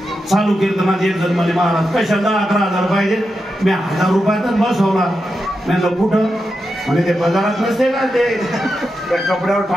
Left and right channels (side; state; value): both; normal; correlation 0.88